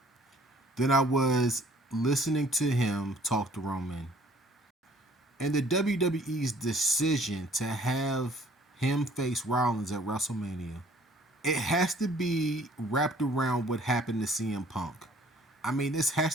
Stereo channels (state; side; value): normal; both; correlation 0.57